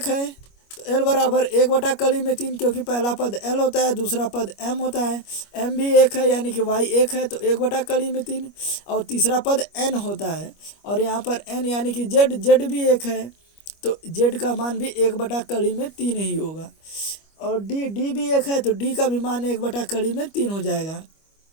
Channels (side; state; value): right; late; 25 ms